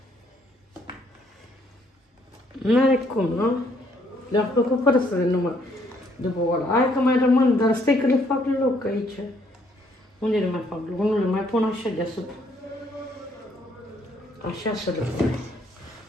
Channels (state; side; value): normal; both; correlation 0.68